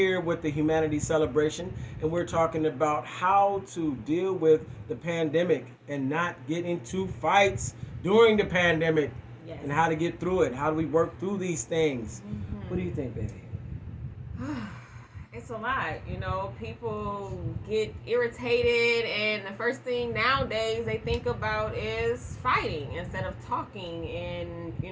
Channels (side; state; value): both; identical; correlation 1.00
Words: with the Humanity Celebration, and we're talking about how to deal with the pandemic and not get into fights during the pandemic, Yes. and how to get through it. How do we work through these things? What do you think, baby? It's a lot, people get irritated, and the first thing nowadays they think about is fighting instead of talking and,